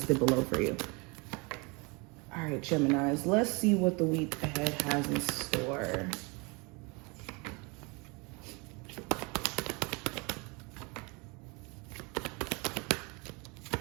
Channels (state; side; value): quieter; left; 29.0 dB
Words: below for you. All right, Geminis, let's see what the week ahead has in store.